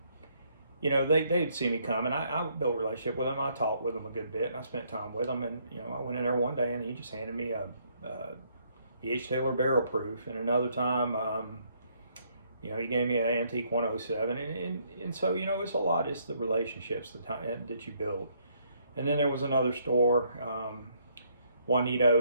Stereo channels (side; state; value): both; inverted; correlation -0.70